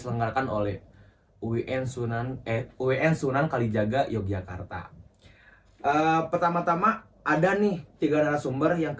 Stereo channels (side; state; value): both; identical; correlation 1.00